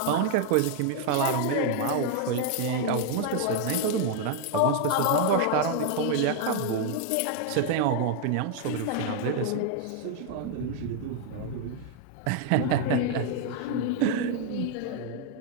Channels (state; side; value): different; both; correlation 0.00